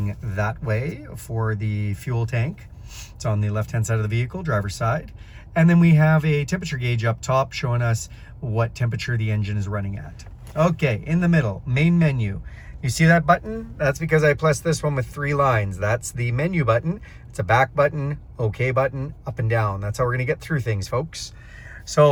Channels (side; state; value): both; identical; correlation 1.00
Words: that way for the fuel tank. It's on the left-hand side of the vehicle, driver's side. And then we have a temperature gauge up top showing us what temperature the engine is running at. Okay, in the middle, main menu. You see that button? That's because I pressed this one with 3 lines. That's the menu button. It's a back button, OK button, up and down. That's how we're gonna get through things, folks.